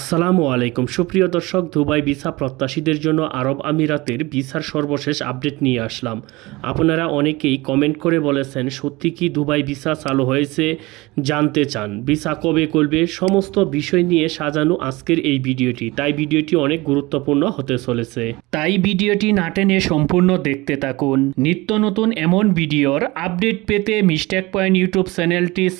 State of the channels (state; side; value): quieter; left; 21.8 dB